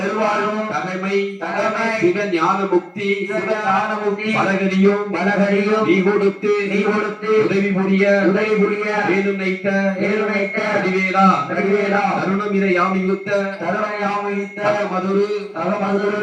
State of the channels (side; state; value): both; identical; correlation 1.00